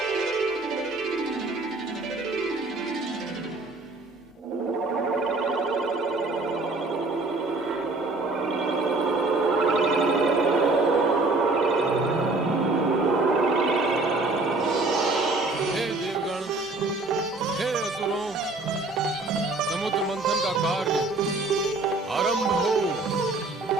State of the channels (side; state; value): left; quieter; 3.3 dB